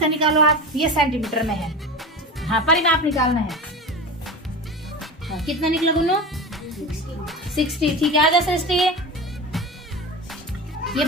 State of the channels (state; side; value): normal; both; correlation 0.28